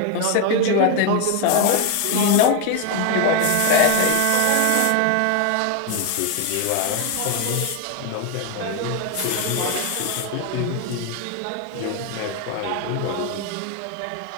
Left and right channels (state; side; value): different; both; correlation 0.01